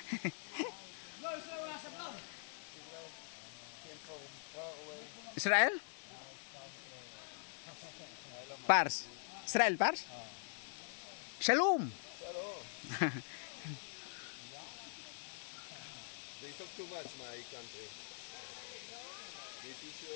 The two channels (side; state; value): right; silent; digital silence